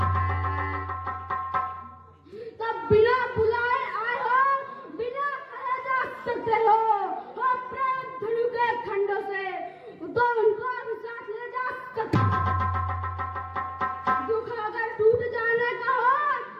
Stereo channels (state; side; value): identical; both; correlation 1.00